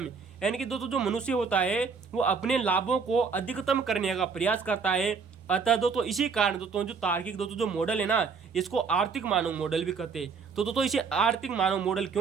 यानी कि दोस्तों जो मनुष्य होता है वो अपने लाभों को अधिकतम करने का प्रयास करता है। अतः दोस्तों इसी कारण दोस्तों जो तार्किक दोस्तों जो मॉडल है ना, इसको आर्थिक मानव मॉडल भी कहते हैं। तो दोस्तों इसे आर्थिक मानव मॉडल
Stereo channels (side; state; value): left; quieter; 5.4 dB